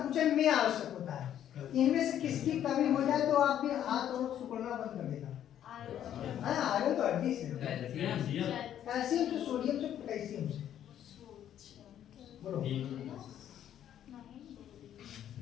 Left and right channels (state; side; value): quieter; right; 10.6 dB